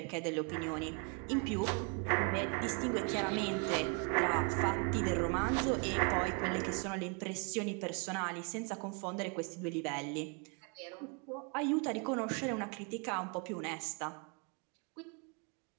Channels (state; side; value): quieter; left; 35.8 dB